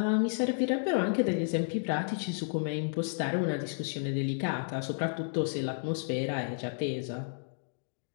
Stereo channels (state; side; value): silent; right; digital silence